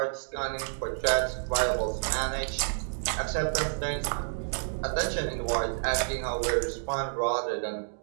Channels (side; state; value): left; silent; digital silence